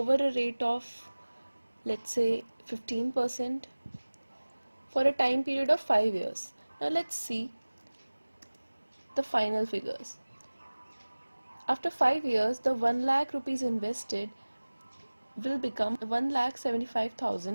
a rate of, let's say, 15% for a time period of 5 years. Now let's see the final figures. After 5 years, the 1 lakh rupees invested will become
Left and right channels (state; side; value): inverted; both; correlation -1.00